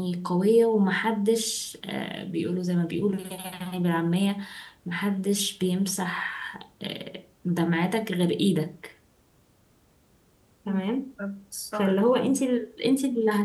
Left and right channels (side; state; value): both; identical; correlation 1.00